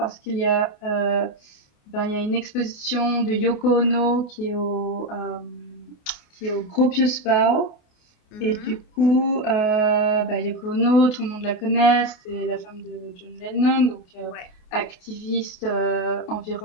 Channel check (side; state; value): right; late; 28 ms